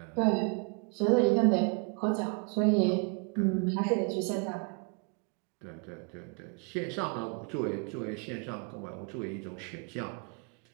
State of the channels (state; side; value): quieter; left; 36.5 dB